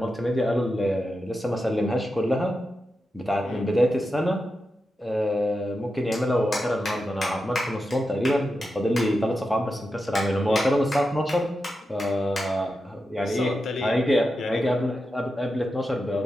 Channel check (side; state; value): both; normal; correlation 0.89